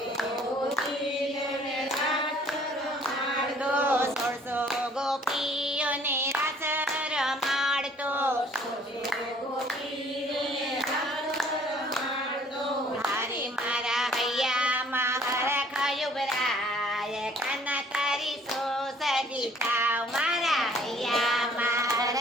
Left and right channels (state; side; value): normal; both; correlation 0.57